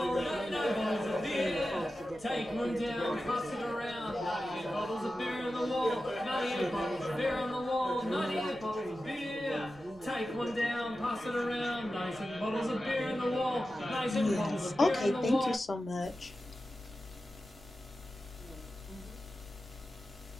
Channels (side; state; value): left; noise; rumble, 24 dB below the sound